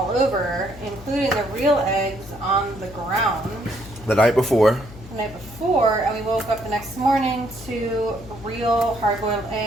over, including the real eggs on the ground The night before. the night before, and we woke up the next morning to real hard-boiled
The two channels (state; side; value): noise; left; hum, 17 dB below the sound